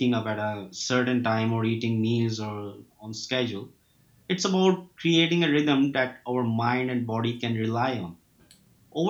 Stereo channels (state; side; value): identical; both; correlation 1.00